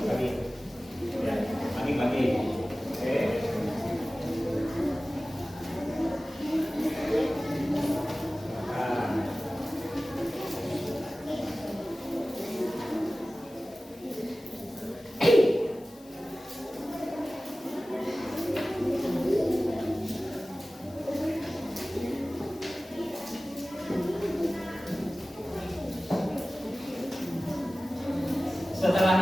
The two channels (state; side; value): noise; left; hiss, 25 dB below the sound